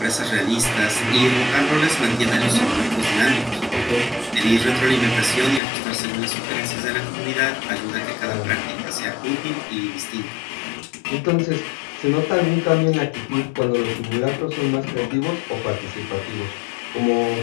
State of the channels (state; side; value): drops out; right; at 5.6 s